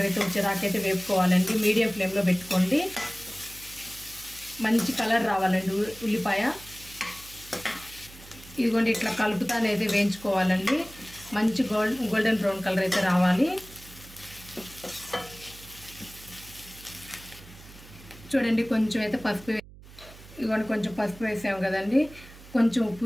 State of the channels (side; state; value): right; noise; hum, 19 dB below the sound